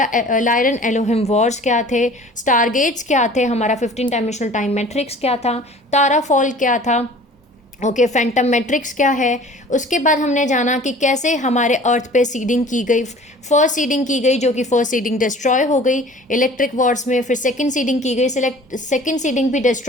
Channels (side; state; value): both; normal; correlation 0.46